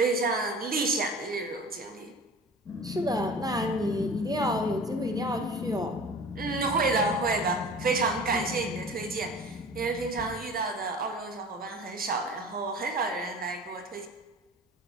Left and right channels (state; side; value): normal; both; correlation 0.40